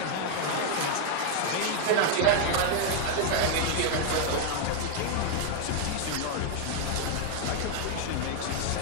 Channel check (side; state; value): both; different; correlation 0.00